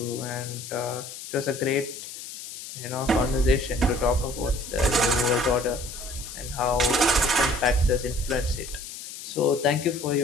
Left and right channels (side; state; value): left; noise; hiss, 11 dB below the sound